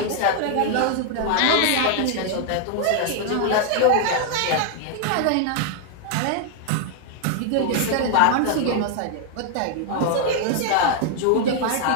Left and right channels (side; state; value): both; different; correlation 0.00